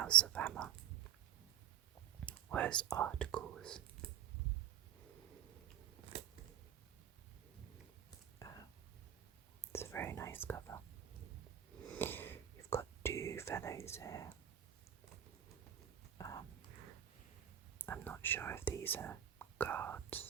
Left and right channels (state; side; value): quieter; left; 10.2 dB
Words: of Hammer was articles. It's a very nice cover. You've got 2 fellows here. I'm not sure if these are